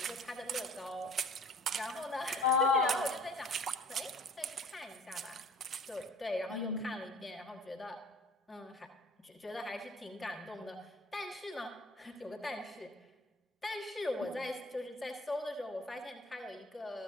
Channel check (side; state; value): both; normal; correlation 0.48